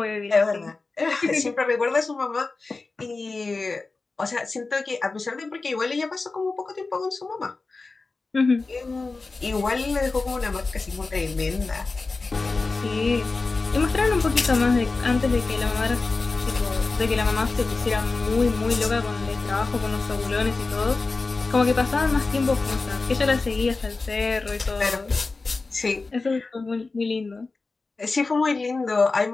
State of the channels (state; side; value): quieter; right; 3.8 dB